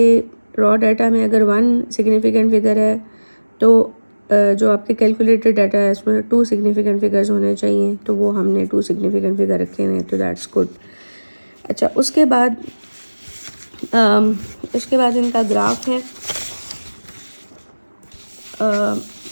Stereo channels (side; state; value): both; inverted; correlation -1.00